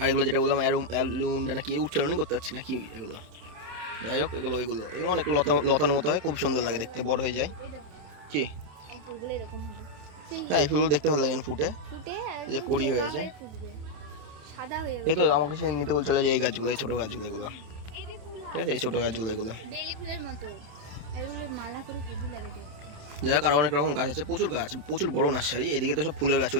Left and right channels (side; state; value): left; late; 27 ms